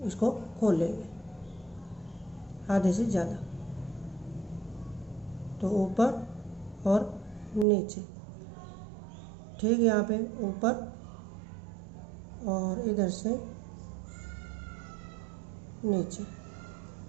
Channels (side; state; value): left; drops out; at 7.7 s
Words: इसको खोल लेंगे, आधे से ज़्यादा। तो ऊपर और नीचे, ठीक, यहाँ पे ऊपर और इधर से नीचे।